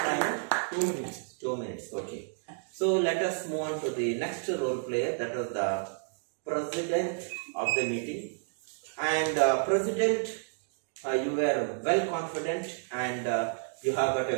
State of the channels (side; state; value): left; silent; digital silence